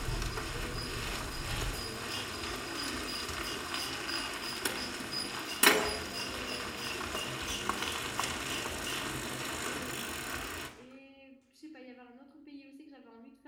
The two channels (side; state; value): both; identical; correlation 1.00